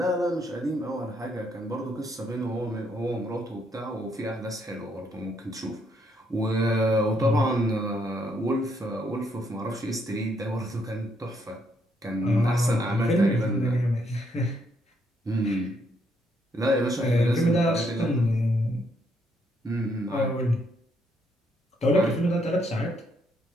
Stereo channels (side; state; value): both; normal; correlation 0.73